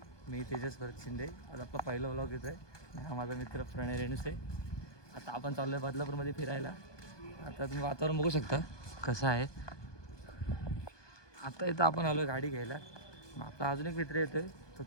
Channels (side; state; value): right; late; 1.2 ms